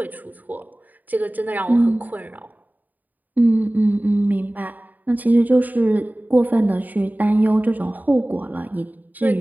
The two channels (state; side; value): late; left; 0.083 ms